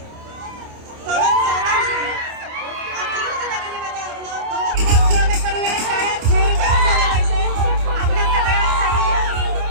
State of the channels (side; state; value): left; late; 27 ms